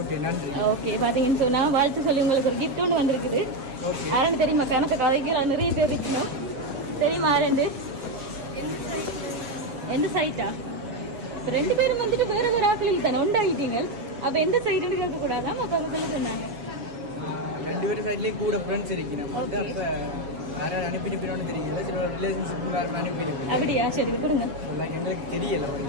நன்றி. ஓகே, பாத்தீங்கன்னு சொன்னா வாழ்த்து சொல்லி உங்களுக்கு ஒரு கிஃப்ட் ஒன்று வந்திருக்குது. ஓகே. யாருன்னு தெரியுமா? கணக்கு கதைக்கு நிறைய பேர் இருக்கணும். தெரியுமா ரெண்டு? எந்த சைட்டா? ரெண்டு பேரும் வந்துட்டு வேற வேற ஆக்களில் தானே உண்டாயிட்டீங்க. அப்ப எந்த சைடுன்னு கேட்க கூடாதான் அப்ப அவங்க சொல்ல சொன்னாங்க. ரெண்டு பேரும் சைட்லயும் கூட ஃப்ரெண்ட்ஸ் இருக்கணும். அப்ப யாராவது அனுப்பிட்டு தெரியல, சில ரிலேஷன்ஷிப் வேற அனுப்பிட்டு. அப்படியா? சரி கொடுங்க. எங்களுக்கு தெரியல.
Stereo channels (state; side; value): late; left; 7.2 ms